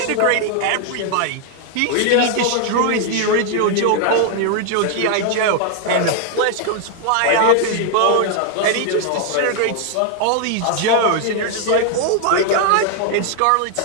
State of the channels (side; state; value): both; different; correlation 0.00